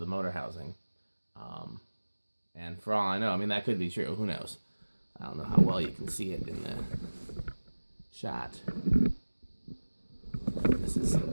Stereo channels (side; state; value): both; inverted; correlation -1.00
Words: motor housing. And for all I know, that could be true. Who knows? I don't know how well you can see it in the shot. This is